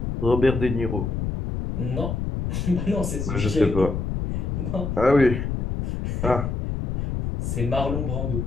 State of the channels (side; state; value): left; noise; rumble, 2 dB below the sound